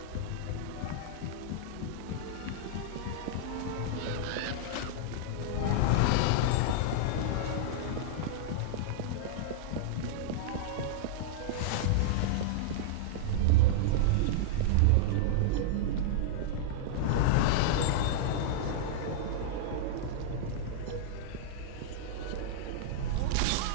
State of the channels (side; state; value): both; different; correlation -0.02